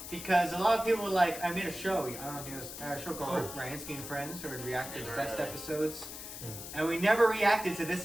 because a lot of people were like, I made a show. I don't know if you know this, a show called Ryansky and Friends, where we react to the best episodes. And we never reacted to this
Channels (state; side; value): noise; left; hiss, 10 dB below the sound